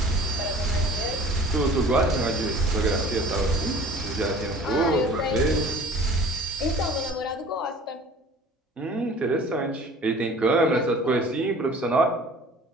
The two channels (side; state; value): both; normal; correlation 0.47